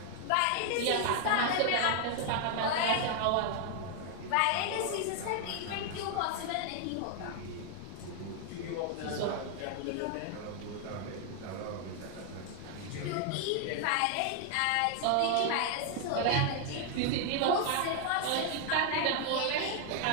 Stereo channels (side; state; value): both; different; correlation 0.00